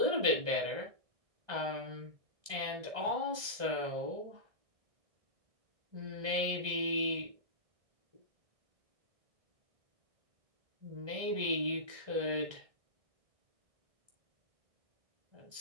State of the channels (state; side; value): late; left; 1.3 ms